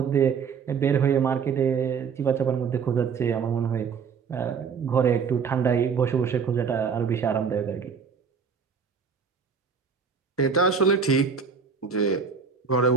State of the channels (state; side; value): quieter; left; 6.1 dB